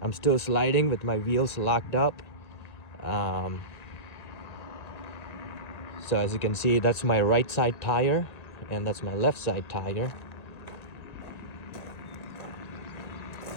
I'm still sliding with my wheels locked up. So as you can see, that's my right side tire, and that's my left side tire.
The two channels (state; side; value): late; right; 1.8 ms